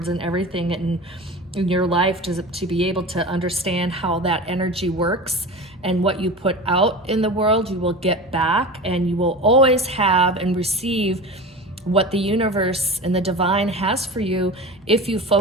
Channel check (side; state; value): both; normal; correlation 0.31